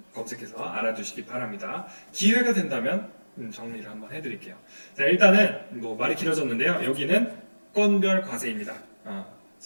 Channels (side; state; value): both; inverted; correlation -1.00